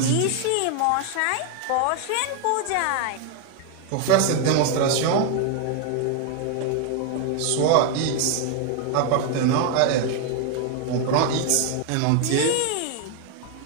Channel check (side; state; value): both; different; correlation 0.00